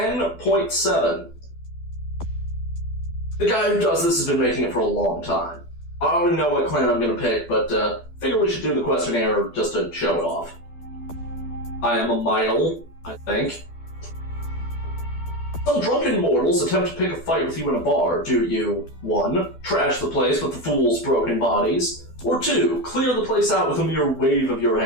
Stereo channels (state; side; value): late; right; 12 ms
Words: The guy who does this has been making it for a long time. I already know what clan I'm going to pick, but figure we should do the questionnaire just to show it off. I am a male, I think. Some drunken mortals attempt to pick a fight with you in a bar. Do you, 1. Trash the place with the fool's broken bodies, or 2. Clear the place out with a mere wave of your